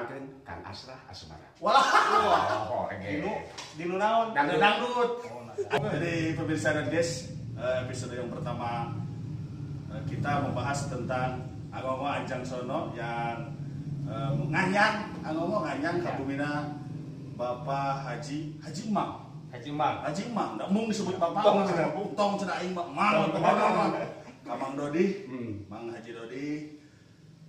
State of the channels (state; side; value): identical; both; correlation 1.00